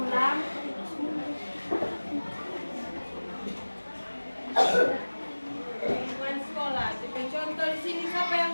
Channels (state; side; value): inverted; both; correlation -1.00